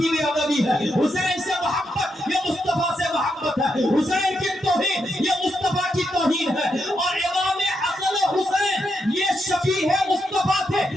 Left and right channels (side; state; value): both; normal; correlation 0.82